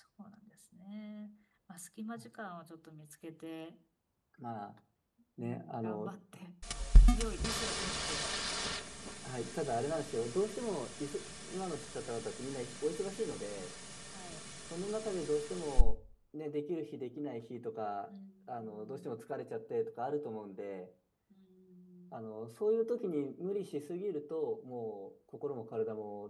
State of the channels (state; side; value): identical; both; correlation 1.00